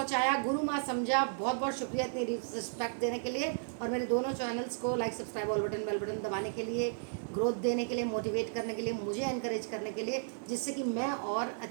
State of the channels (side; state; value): left; silent; digital silence